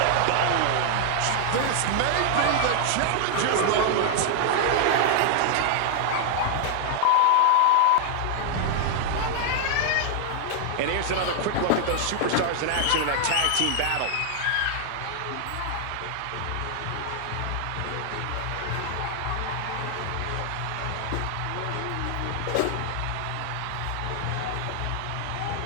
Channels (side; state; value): both; different; correlation 0.00